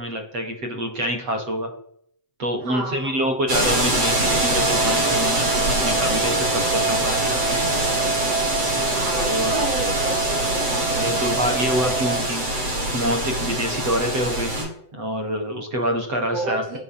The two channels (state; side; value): late; left; 7.9 ms